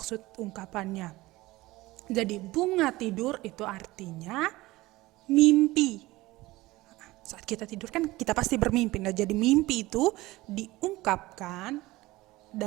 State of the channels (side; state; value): left; quieter; 19.2 dB